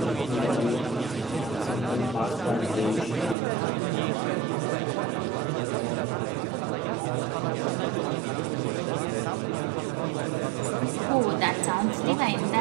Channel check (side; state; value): left; drops out; at 3.4 s